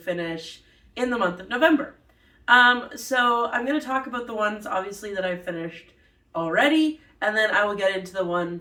in the month of November. So I'm going to talk about the ones obviously that I've finished already, and then I will get into the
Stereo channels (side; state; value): both; identical; correlation 1.00